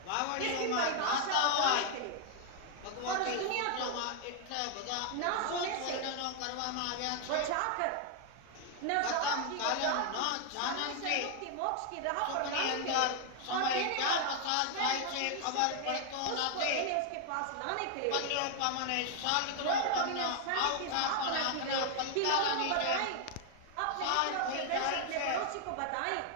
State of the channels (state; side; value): different; both; correlation 0.00